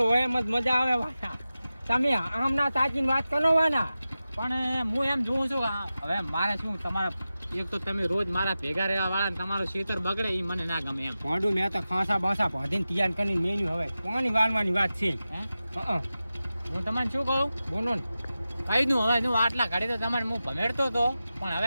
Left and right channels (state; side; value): inverted; both; correlation -0.94